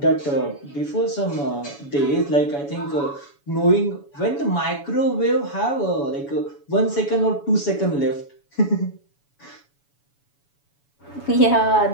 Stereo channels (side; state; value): right; late; 7.1 ms